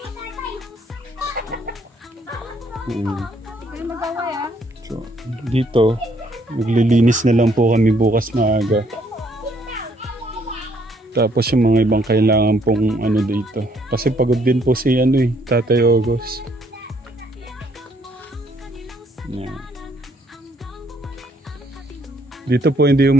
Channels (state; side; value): normal; both; correlation 0.67